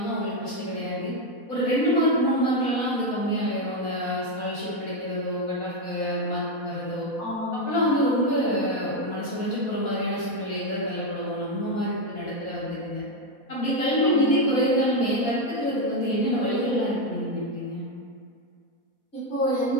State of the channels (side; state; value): right; late; 4.1 ms